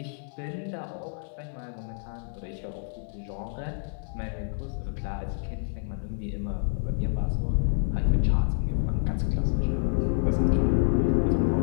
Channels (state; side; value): silent; right; 59 dB below the other